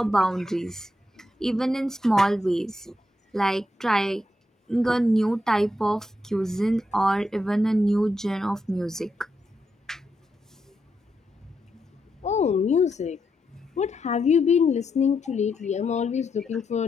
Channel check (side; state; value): both; normal; correlation 0.83